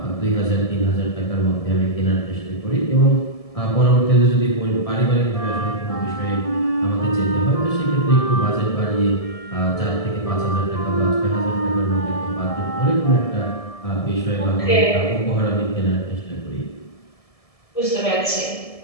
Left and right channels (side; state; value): right; late; 1.7 ms